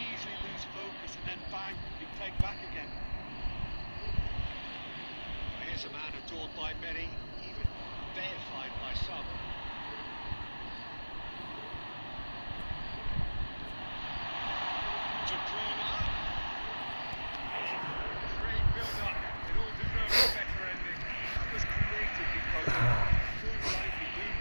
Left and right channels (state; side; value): inverted; both; correlation -1.00